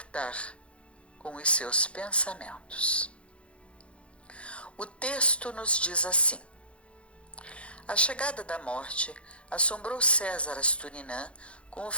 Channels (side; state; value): right; late; 0.060 ms